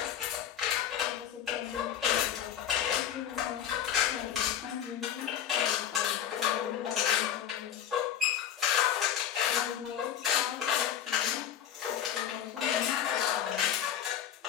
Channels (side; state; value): right; quieter; 10.0 dB